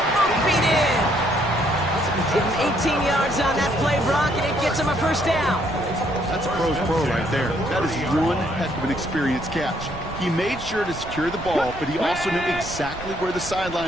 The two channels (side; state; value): right; noise; rumble, 13 dB below the sound